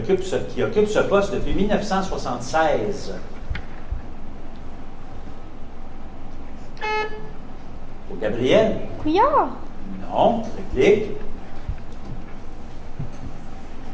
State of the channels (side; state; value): both; identical; correlation 1.00